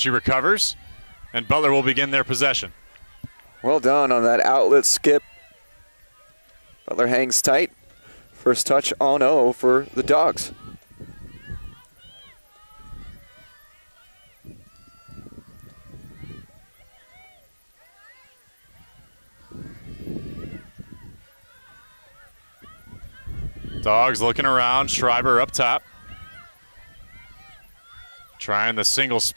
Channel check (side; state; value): both; inverted; correlation -1.00